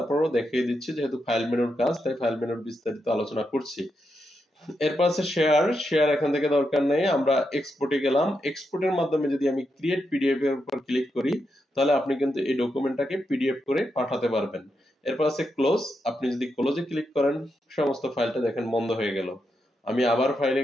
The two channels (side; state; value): both; normal; correlation 0.84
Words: দেখিয়ে দিচ্ছি যেহেতু ফাইল মেনুর কাজ তাই ফাইল মেনুর বিস্তারিত আলোচনা করছি। এরপর আছে শেয়ার এখান থেকে দরকার নেই, আমরা এক্সপোর্টে গেলাম। এক্সপোর্টের মাধ্যমে যদি আমি ক্রিয়েট পিডিএফ এর উপর ক্লিক করি তাহলে আপনি কিন্তু এই ডকুমেন্টটাকে পিডিএফ করে পাঠাতে পারবেন। এরপর আছে ক্লোজ, আপনি যদি ক্লোজে ক্লিক করেন সমস্ত ফাইলটা দেখেন বন্ধ হয়ে গেল। আমি আবার ফাইলে